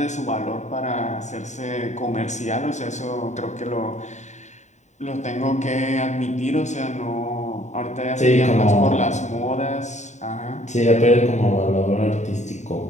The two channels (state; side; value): late; right; 0.34 ms